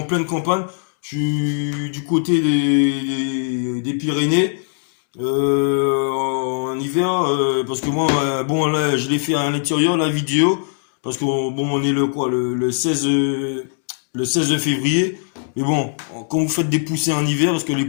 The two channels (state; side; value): silent; right; digital silence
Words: pleine campagne, je suis du côté des Pyrénées. En hiver, parce que moi, bon là, je l'ai fait à l'intérieur, la vidéo. Parce qu'on bon, on est le quoi, le 16, le 16 février. Mais bon, quand vous faites des poussins en hiver, parce que les